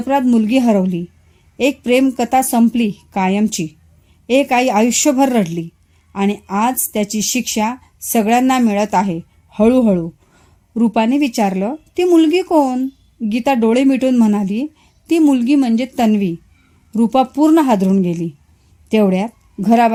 मुलगी हरवली. एक प्रेमकथा संपली कायमची. एक आई आयुष्यभर रडली. आणि आज त्याची शिक्षा सगळ्यांना मिळत आहे हळूहळू. रूपाने विचारलं, ती मुलगी कोण? गीता डोळे मिटून म्हणाली, ती मुलगी म्हणजे तन्वी. रूपा पूर्ण हादरून गेली. तेवढ्यात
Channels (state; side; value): identical; both; correlation 1.00